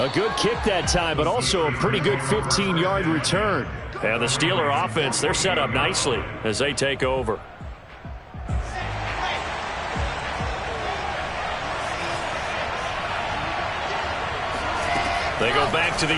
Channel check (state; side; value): identical; both; correlation 1.00